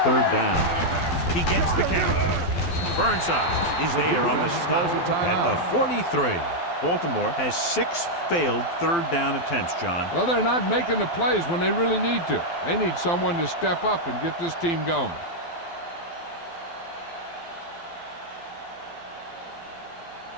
down. He gets the count. Burnside is there on the stop at the 43. Baltimore has 6 failed 3rd down attempts, John. Well, they're not making the plays when they really need to. They need someone to step up and get this team going.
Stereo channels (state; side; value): late; right; 12 ms